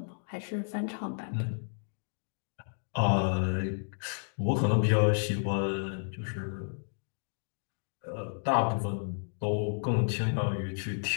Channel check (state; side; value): silent; right; digital silence